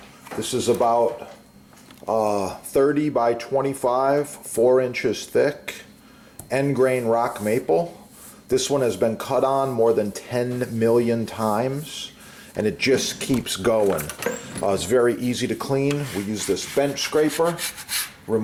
This is about 30 by 25, 4 inches thick, end grain rock maple. This one has been cut on more than 10 million times, and it just keeps going. It's very easy to clean. We use this bench scraper,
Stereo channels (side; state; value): both; identical; correlation 1.00